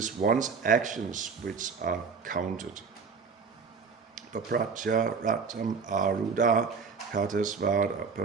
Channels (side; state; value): left; quieter; 5.3 dB